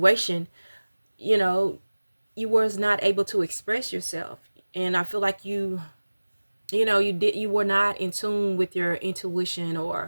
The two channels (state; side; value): inverted; both; correlation -1.00